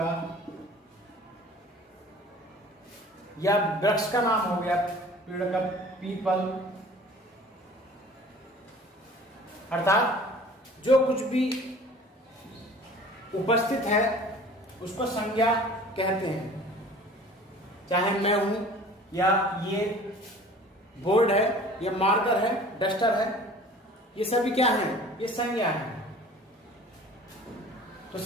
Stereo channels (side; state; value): both; normal; correlation 0.46